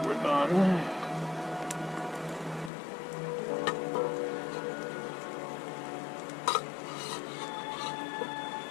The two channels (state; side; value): drops out; right; at 2.7 s